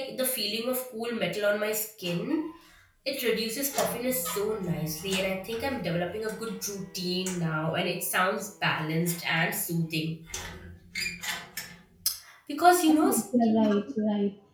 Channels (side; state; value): both; identical; correlation 1.00